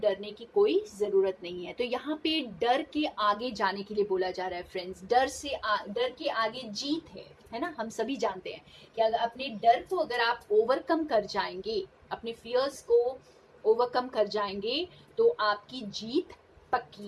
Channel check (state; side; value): identical; both; correlation 1.00